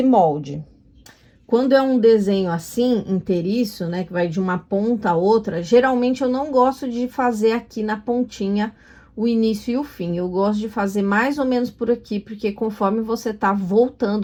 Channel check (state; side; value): identical; both; correlation 1.00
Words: molde. Quando é um desenho assim, inteiriço, né, que vai de uma ponta a outra, geralmente eu não gosto de fazer aqui na pontinha o início e o fim. Eu gosto de fazer mais ou menos por aqui, porque conforme você tá